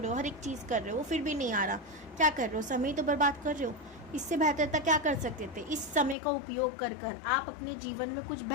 हो, हर एक चीज़ कर रहे हो, फिर भी नहीं आ रहा, क्या कर रहे हो? समय तो बर्बाद कर रहे हो। इससे बेहतर था क्या कर सकते थे? इस समय का उपयोग कर आप अपने जीवन में कुछ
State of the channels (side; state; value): right; drops out; at 6.2 s